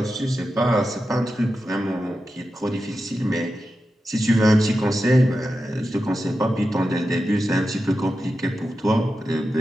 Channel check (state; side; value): normal; both; correlation 0.91